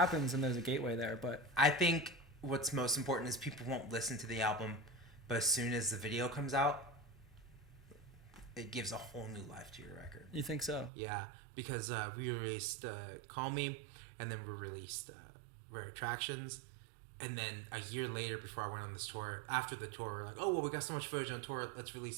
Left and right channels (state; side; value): drops out; left; at 10.9 s